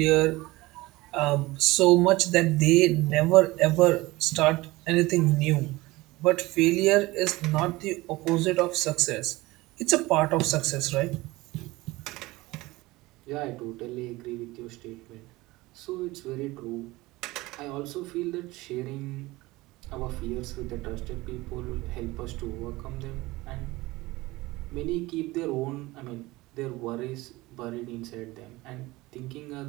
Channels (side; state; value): left; quieter; 20.3 dB